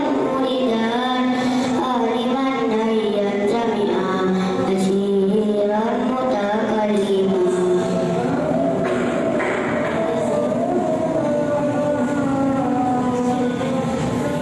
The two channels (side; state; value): both; identical; correlation 1.00